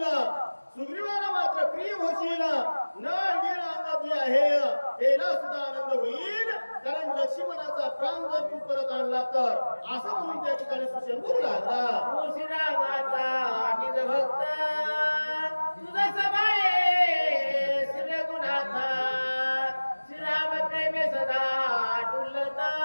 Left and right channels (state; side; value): inverted; both; correlation -1.00